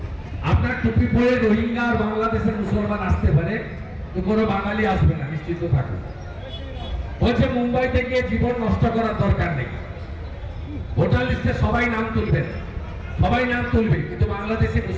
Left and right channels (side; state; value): both; identical; correlation 1.00